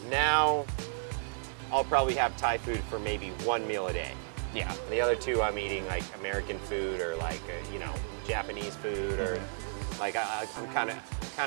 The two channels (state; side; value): silent; left; digital silence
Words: Now I'll probably have Thai food for maybe 1 meal a day. Yeah. And the other 2 I'm eating like American food or like, you know, Japanese food or like I'm